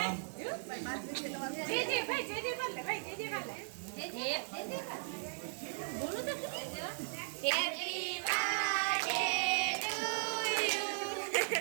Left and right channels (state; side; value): silent; left; digital silence